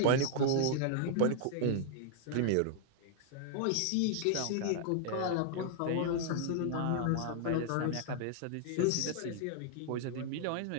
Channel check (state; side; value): different; both; correlation 0.00